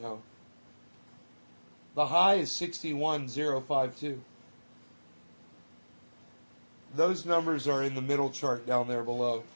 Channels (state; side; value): inverted; both; correlation -1.00